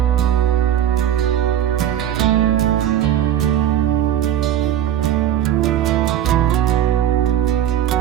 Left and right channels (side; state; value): left; quieter; 10.9 dB